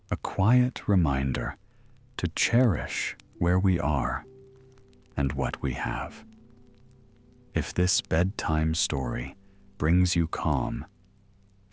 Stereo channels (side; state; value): both; identical; correlation 1.00